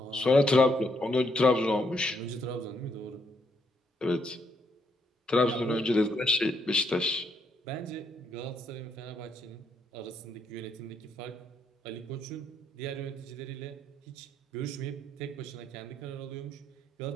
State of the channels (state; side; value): normal; both; correlation 0.74